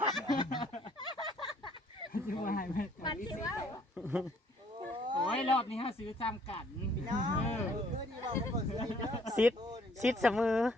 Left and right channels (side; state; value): both; normal; correlation 0.63